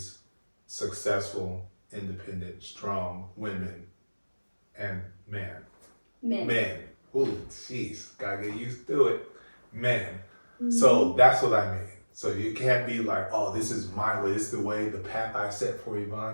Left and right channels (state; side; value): inverted; both; correlation -1.00